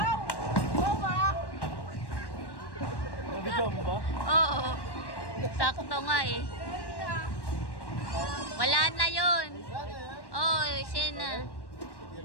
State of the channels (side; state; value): right; late; 1.1 ms